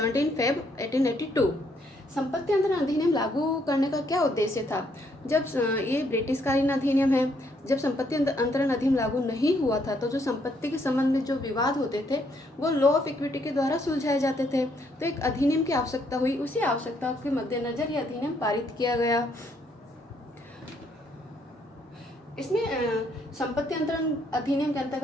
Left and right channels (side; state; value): both; normal; correlation 0.71